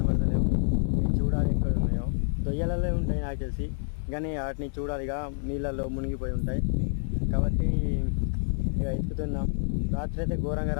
చూడాలి ఎక్కడ ఉన్నాయో. దొయ్యలలో ఉంటాయి నాకు తెలిసి, కానీ వాటిని చూడాలి. ఇక నీళ్ళల్లో మునిగిపోయి ఉంటాయి కాబట్టి ఇక ఎత్తుతున్నాం. రాత్రి అయితే ఘోరంగా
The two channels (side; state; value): right; silent; 59 dB below the other